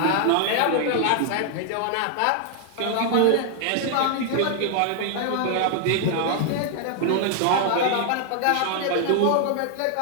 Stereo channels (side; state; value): both; different; correlation 0.00